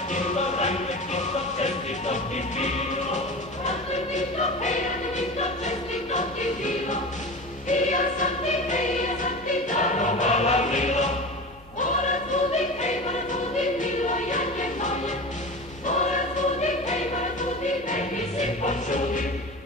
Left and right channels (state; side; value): normal; both; correlation 0.30